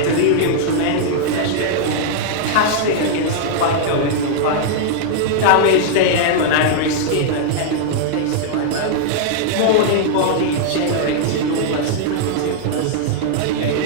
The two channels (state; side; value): different; both; correlation -0.01